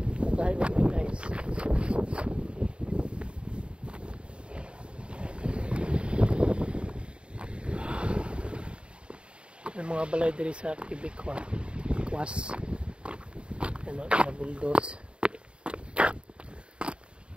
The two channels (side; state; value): left; late; 0.055 ms